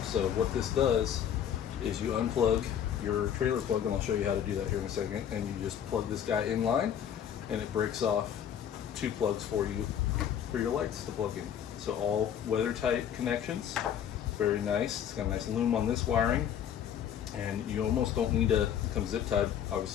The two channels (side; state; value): right; quieter; 9.2 dB